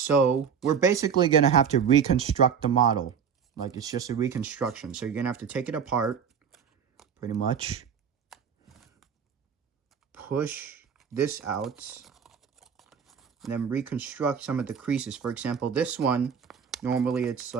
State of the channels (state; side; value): quieter; left; 7.1 dB